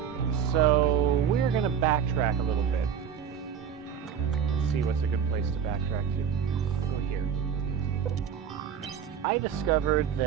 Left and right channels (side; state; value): left; quieter; 7.8 dB